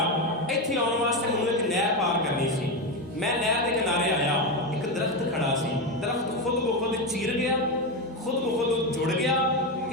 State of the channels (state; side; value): normal; both; correlation 0.13